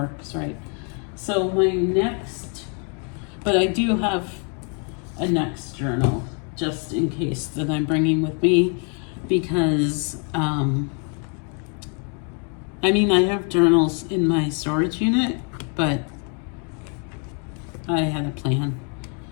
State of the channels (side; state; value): right; quieter; 39.3 dB